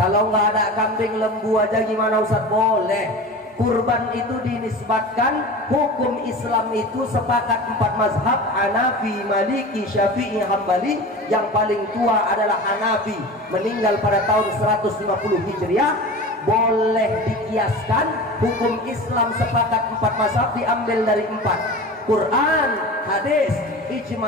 nggak ada kambing, lembu aja gimana Ustaz? Boleh. Kurban itu dinisbatkan, hukum Islam itu sepakat 4 mazhab, Hanafi, Maliki, Syafi'i, Hambali. Yang paling tua adalah Hanafi, meninggal pada tahun 150 Hijriah. Boleh dikiaskan, hukum Islam sepakat 4 mazhab diambil dari 4: Quran, hadis,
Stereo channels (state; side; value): normal; both; correlation 0.34